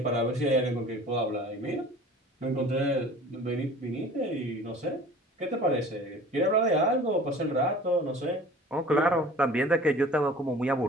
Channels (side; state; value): both; normal; correlation 0.44